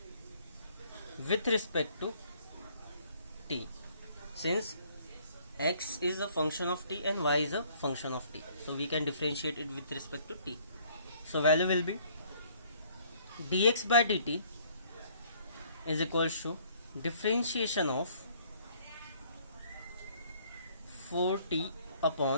with respect to t, since x is a function of t and y is a function of t, so we can differentiate it with respect to t. So value will be dx by dt is equals to differentiation of 4t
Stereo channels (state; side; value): inverted; both; correlation -0.60